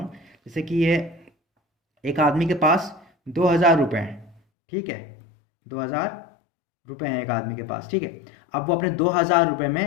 जैसे कि ये एक आदमी के पास 2,000 रुपये हैं, ठीक है, 2,000 रुपये हैं एक आदमी के पास, ठीक है। अब वो अपने 2,000 रुपये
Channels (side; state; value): right; drops out; at 4.4 s